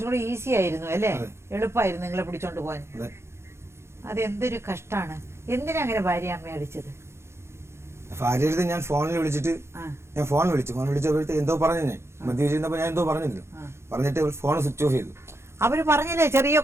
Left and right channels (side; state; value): left; late; 0.13 ms